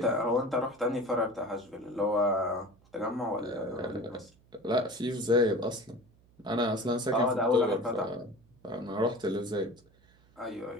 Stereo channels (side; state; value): right; noise; hum, 30 dB below the sound